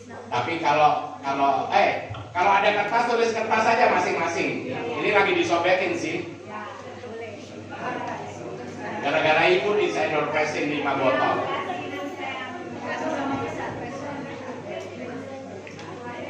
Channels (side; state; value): both; identical; correlation 1.00